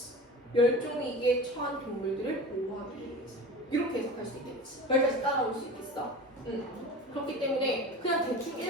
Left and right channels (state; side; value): normal; both; correlation 0.34